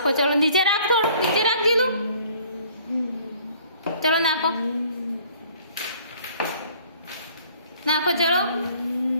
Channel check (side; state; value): both; inverted; correlation -0.56